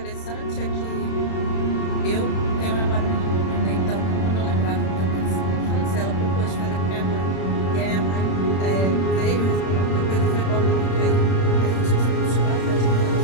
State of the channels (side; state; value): right; late; 31 ms